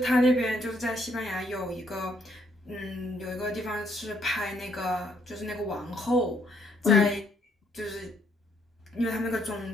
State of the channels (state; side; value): normal; both; correlation 0.70